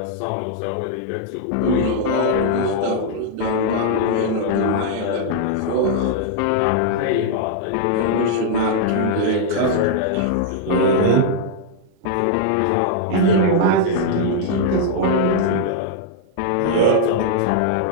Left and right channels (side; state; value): both; different; correlation -0.01